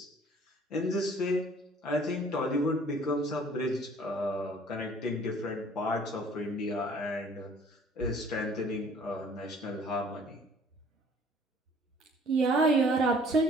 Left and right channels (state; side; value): normal; both; correlation 0.54